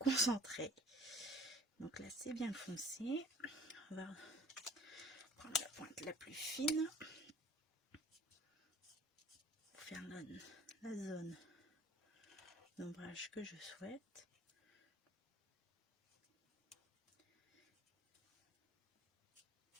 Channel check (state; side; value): normal; both; correlation 0.49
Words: Donc là, c'est bien foncé. On va prendre la pointe la plus fine pour faire la zone d'ombrage que je souhaite.